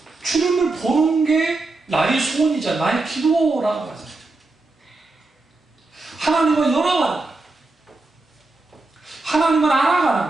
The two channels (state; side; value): quieter; left; 3.2 dB